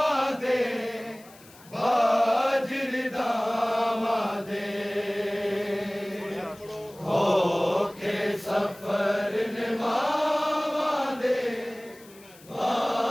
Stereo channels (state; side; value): noise; left; hiss, 24 dB below the sound